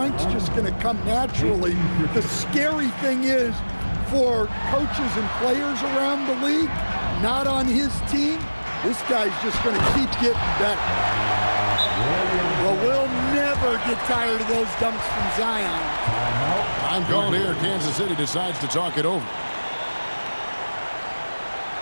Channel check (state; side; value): inverted; both; correlation -1.00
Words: just going to come naturally. The scary thing is for coaches and players around the league, not on his team, this guy's just going to keep getting better. Well, we'll never get tired of those dunks from Zion. I'm called here. Kansas City decides to talk it over.